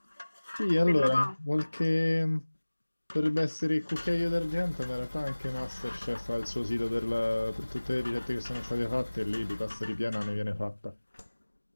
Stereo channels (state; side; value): inverted; both; correlation -1.00